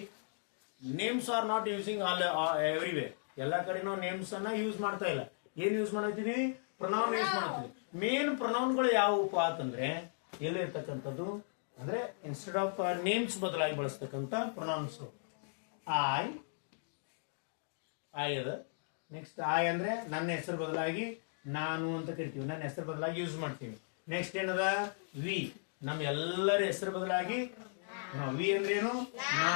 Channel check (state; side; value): silent; right; digital silence